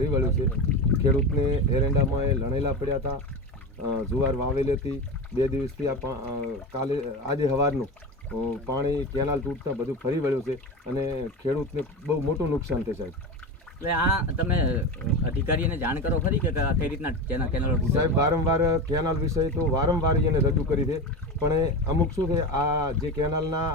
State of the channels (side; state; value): both; normal; correlation 0.24